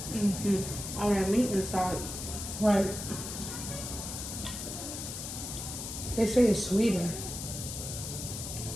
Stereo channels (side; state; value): left; noise; hiss, 7 dB below the sound